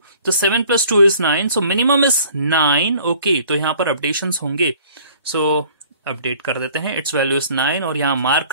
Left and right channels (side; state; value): both; inverted; correlation -0.53